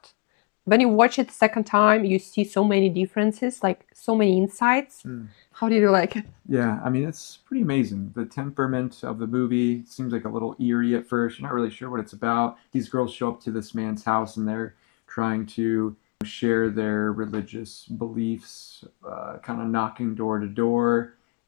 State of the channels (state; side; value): quieter; right; 30.0 dB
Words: When you watch it second time, you see so many differences, like so many insights. Mm. How did you like it? Yeah, I mean, it's pretty amazing. The temperament of the movie seems like a little eerie at first. You're not really sure what it's about. These girls show up to this man's house and they're trying to share their religious beliefs, kind of knocking door to door.